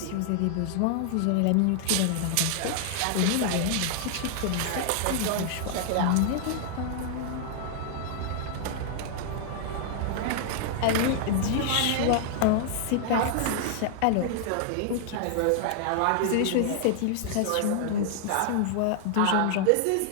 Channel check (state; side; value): different; both; correlation 0.00